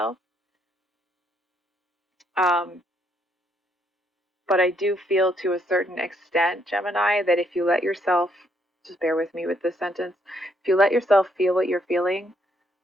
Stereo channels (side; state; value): both; normal; correlation 0.72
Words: Um, but I do feel to a certain extent, Gemini, that if you let yourself, just bear with me with this sentence, if you let yourself feel what you're feeling,